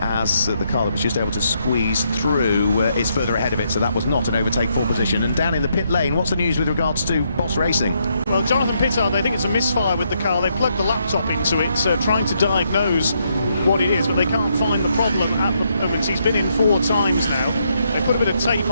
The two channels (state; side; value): inverted; both; correlation -0.76